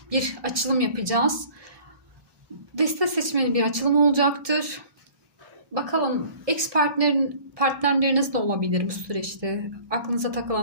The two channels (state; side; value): late; left; 1.7 ms